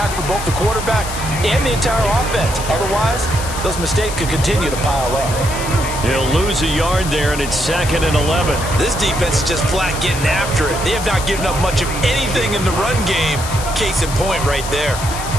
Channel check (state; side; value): noise; left; hiss, 9 dB below the sound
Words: for both the quarterback and the entire offense. Otherwise, those mistakes could continue to pile up. He'll lose a yard there, and it's 2nd and 11. This defense is just flat getting after it. They have not given up much of anything in the run game. Case in point right there.